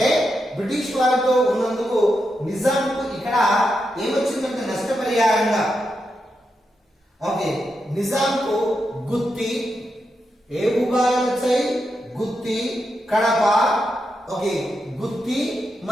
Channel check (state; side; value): normal; both; correlation 0.85